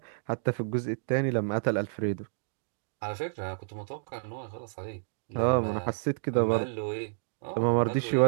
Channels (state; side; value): silent; left; digital silence